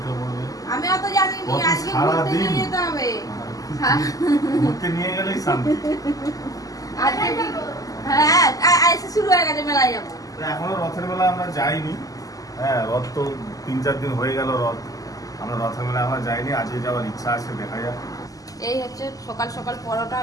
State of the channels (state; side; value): late; right; 0.17 ms